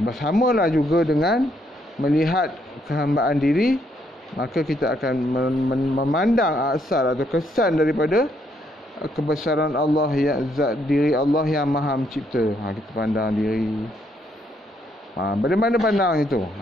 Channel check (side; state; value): both; normal; correlation 0.73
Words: juga dengan melihat kehambaan diri, maka kita akan memandang asal atau kesan daripada kebesaran Allah, yang zat diri Allah yang Maha Mencipta. Kita pandang diri. Bagaimana pandang itu?